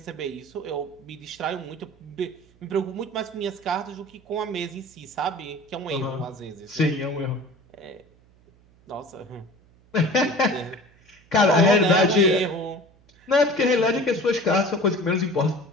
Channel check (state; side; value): noise; right; hum, 29 dB below the sound